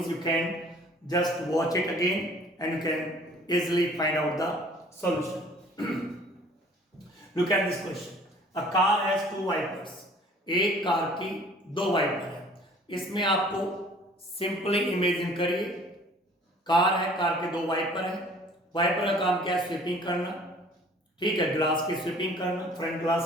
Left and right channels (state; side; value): normal; both; correlation 0.52